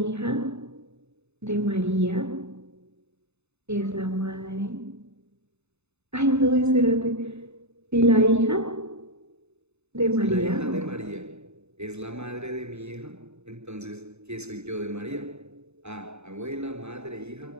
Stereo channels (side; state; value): left; late; 0.81 ms